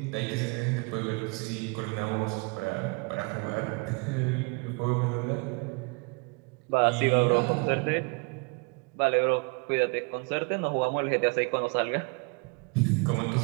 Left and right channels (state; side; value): quieter; left; 31.2 dB